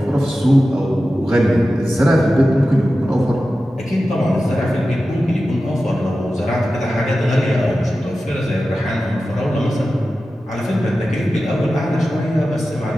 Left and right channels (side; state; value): both; normal; correlation 0.93